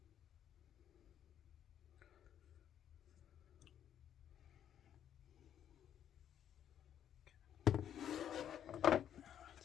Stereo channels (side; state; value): right; quieter; 9.9 dB